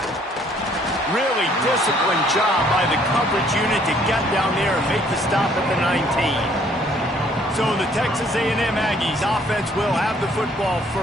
Really disciplined job by the coverage unit to get down there and make the stop at the 19. So the Texas A&M Aggies offense will have the football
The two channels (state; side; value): normal; both; correlation 0.62